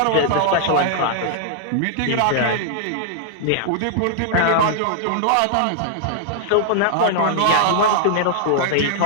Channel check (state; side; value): different; both; correlation -0.01